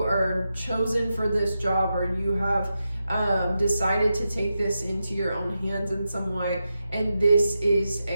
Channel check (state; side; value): inverted; both; correlation -0.88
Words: are chosen for this job, or you have decided to take this into your own hands in some way, and this is